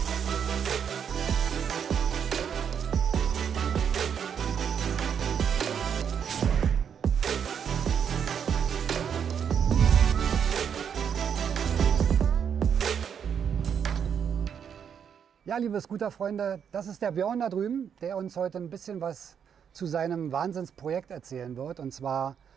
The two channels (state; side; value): quieter; left; 7.8 dB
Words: Ja, liebe Scooter-Freunde, das ist der Björn da drüben, der uns heute ein bisschen was zu seinem Wahnsinnsprojekt erzählen wird. Und zwar